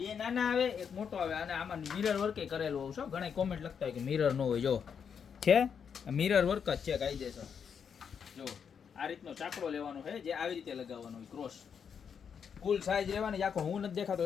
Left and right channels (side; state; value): right; quieter; 7.1 dB